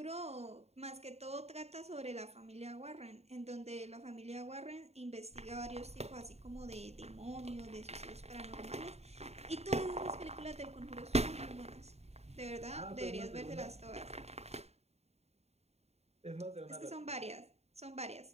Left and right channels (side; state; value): left; late; 0.31 ms